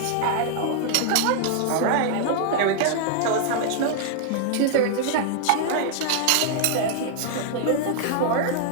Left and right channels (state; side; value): different; both; correlation 0.00